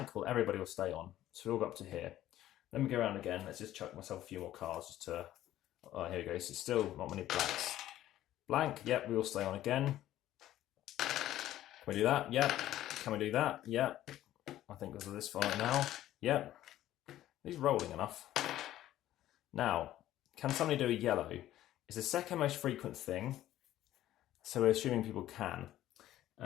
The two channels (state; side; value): quieter; right; 13.5 dB